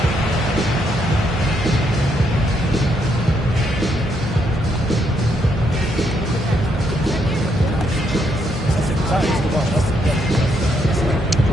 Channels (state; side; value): normal; both; correlation 0.75